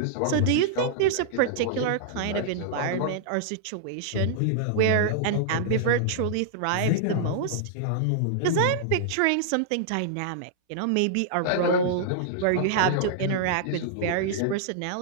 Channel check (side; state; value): both; different; correlation -0.01